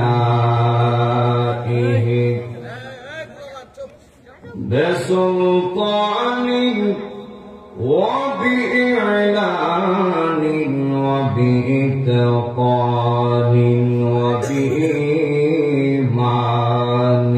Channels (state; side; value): identical; both; correlation 1.00